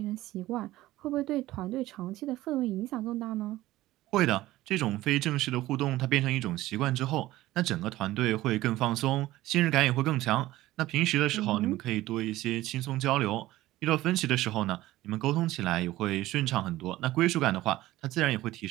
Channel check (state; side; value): quieter; left; 16.4 dB